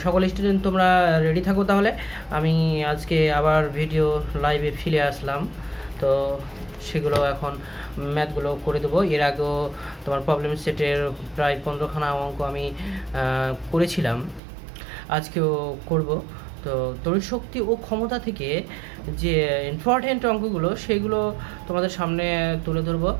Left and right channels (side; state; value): left; drops out; at 14.4 s